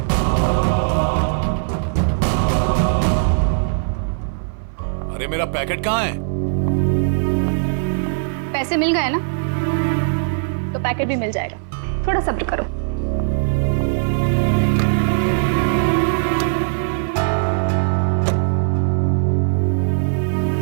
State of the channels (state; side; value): silent; left; 57 dB below the other